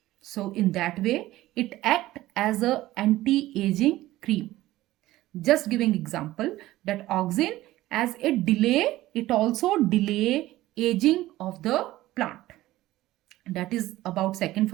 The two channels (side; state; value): left; quieter; 16.2 dB